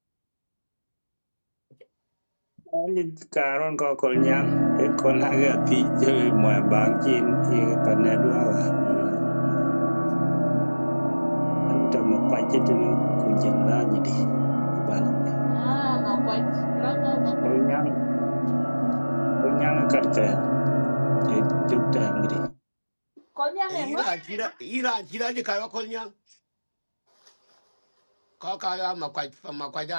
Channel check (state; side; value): inverted; both; correlation -1.00